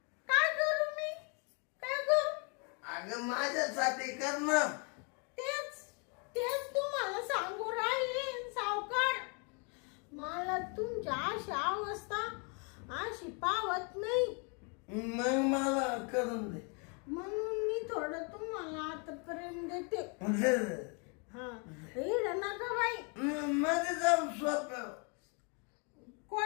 मी काय करू अगं माझ्यासाठी कर ना. तेच तुम्हाला सांगू राहिले सावकार मला तुमच्या अशी अवस्था अशी पावत नाही. मग मला करून दे. म्हणून मी थोडं तुम्हाला आता प्रेम देते. हा इड नका बाई मध्ये जाऊन सोप्या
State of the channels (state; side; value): quieter; right; 35.7 dB